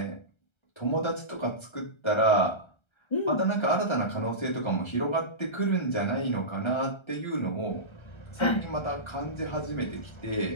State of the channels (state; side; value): late; right; 1.3 ms